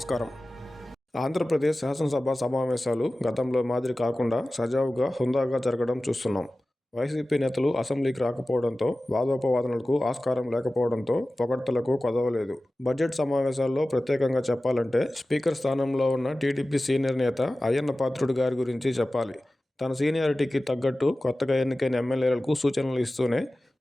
ఆంధ్రప్రదేశ్ శాసనసభ సమావేశాలు గతంలో మాదిరి కాకుండా సజావుగా, హుందాగా జరగడం చూస్తున్నాం. వైసీపీ నేతలు అసెంబ్లీకి రాకపోవడంతో, వాదోపవాదనలకు ఆస్కారం లేకపోవడంతో పొగడ్తలకు కొదవలేదు. బడ్జెట్ సమావేశాల్లో ప్రత్యేకంగా చెప్పాలంటే స్పీకర్ స్థానంలో ఉన్న టీడీపీ సీనియర్ నేత అయ్యన్న పాత్రుడు గారి గురించి చెప్పాలి. తన సీనియారిటీకి తగ్గట్టు కొత్తగా ఎన్నికైన ఎమ్మెల్యేలకు సూచనలు ఇస్తూనే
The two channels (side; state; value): both; normal; correlation 0.96